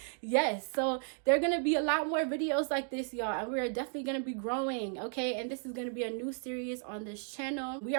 Yes, so there are gonna be a lot more videos like this, y'all, and we are definitely gonna be growing. Okay, and this is gonna be a new series on this channel. We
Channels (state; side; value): silent; left; 55 dB below the other